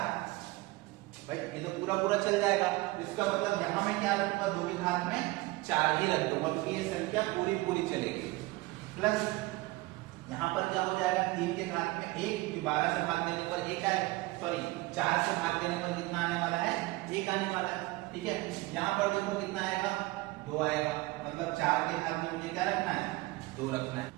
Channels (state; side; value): quieter; left; 20.9 dB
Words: भाई ये तो पूरा चल जाएगा। इसका मतलब यहां मैं क्या रखूंगा, 2 के घात में 4 ही रख दूंगा क्योंकि ये संख्या पूरी चलेगी। प्लस यहाँ पर क्या हो जाएगा, 3 के घात में 1, क्योंकि 12 से भाग देने पर 1 आए, सॉरी 4 से भाग देने पर कितना आने वाला है 1 आने वाला है। ठीक है, यहाँ पर देखो कितना आएगा 2 आएगा, मतलब 4 के घात में मुझे क्या रखना है 2 रखना है।